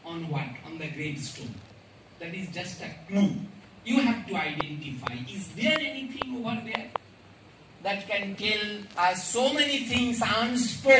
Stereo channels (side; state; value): both; identical; correlation 1.00